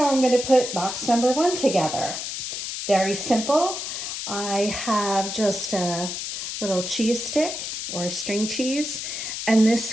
I'm going to put box number 1 together. Very simple. I have just a little cheese stick or a string cheese. And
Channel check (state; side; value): noise; left; hiss, 5 dB below the sound